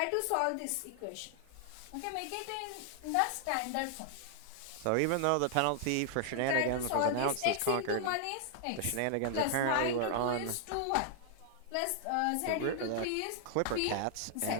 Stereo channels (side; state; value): both; different; correlation 0.00